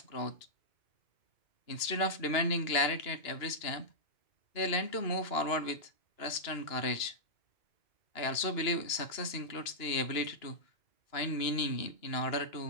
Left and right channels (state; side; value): late; right; 2.9 ms